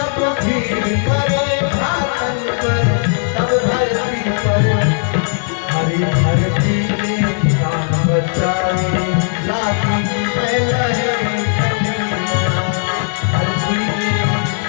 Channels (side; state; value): right; silent; digital silence